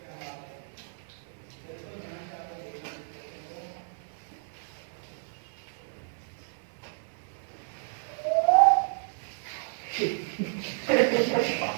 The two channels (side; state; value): left; silent; 56 dB below the other